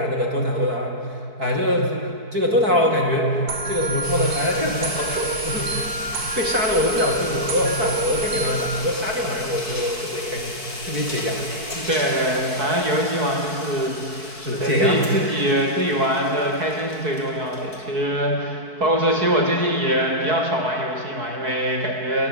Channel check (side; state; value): left; late; 4.6 ms